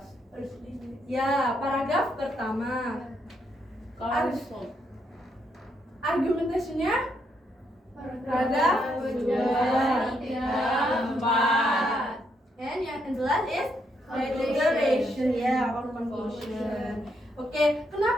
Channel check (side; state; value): both; normal; correlation 0.77